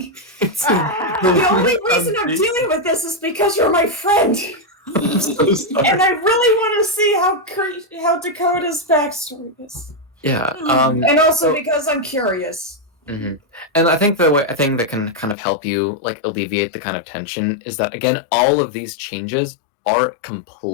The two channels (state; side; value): drops out; right; at 15.4 s